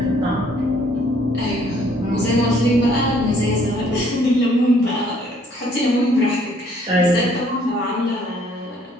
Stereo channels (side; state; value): both; normal; correlation 0.62